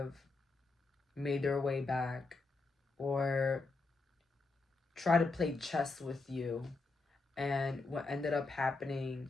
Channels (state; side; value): quieter; right; 3.6 dB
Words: made their way back or try to play chess with you. And what ended up happening